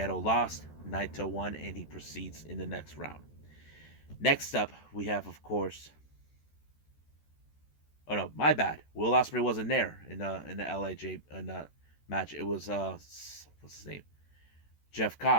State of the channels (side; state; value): right; late; 14 ms